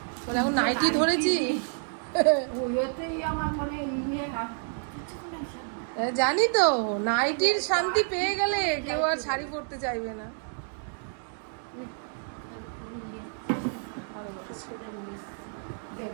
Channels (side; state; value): left; silent; 59 dB below the other